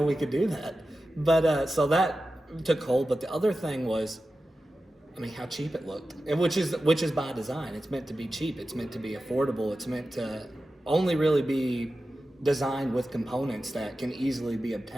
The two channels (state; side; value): normal; both; correlation 0.93